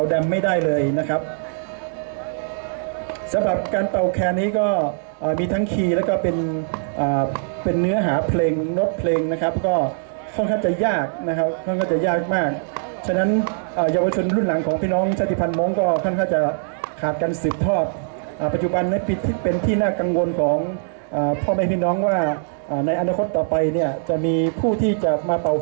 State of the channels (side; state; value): left; silent; 64 dB below the other